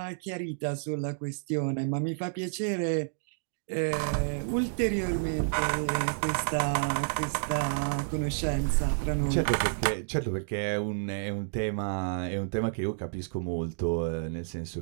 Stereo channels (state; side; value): silent; left; digital silence